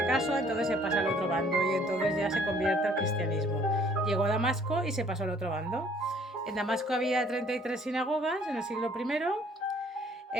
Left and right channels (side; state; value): both; normal; correlation 0.59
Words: caso, entonces se pasa al otro bando y entonces ya se convierte al cristianismo. Llegó a Damasco y se pasó al otro bando. En Damasco había 33 sinagogas en el siglo